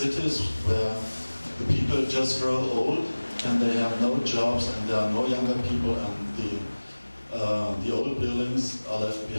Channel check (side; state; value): both; inverted; correlation -1.00